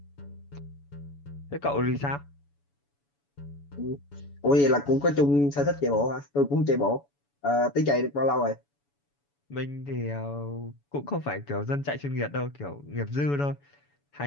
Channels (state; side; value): late; right; 7.0 ms